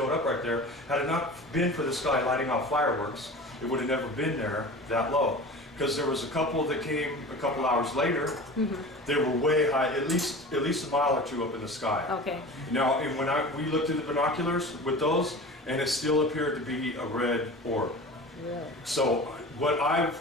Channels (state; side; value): normal; both; correlation 0.36